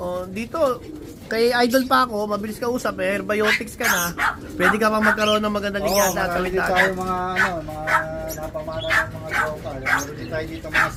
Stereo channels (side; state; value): both; identical; correlation 1.00